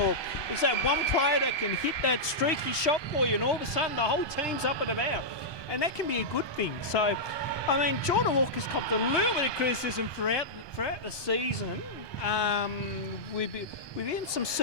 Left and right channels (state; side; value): late; right; 1.2 ms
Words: it's that one player that can hit that streaky shot for you, and all of a sudden the whole team's up and about. And that can be a good thing. So, I mean, Jordan Walker's copped a little bit of criticism throughout the season. Within some